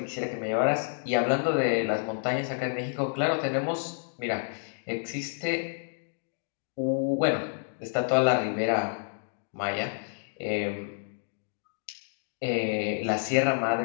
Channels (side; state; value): right; silent; digital silence